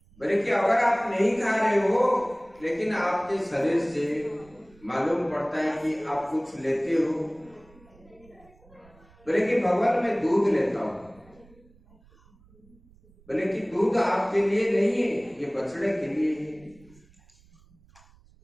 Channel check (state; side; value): noise; right; rumble, 28 dB below the sound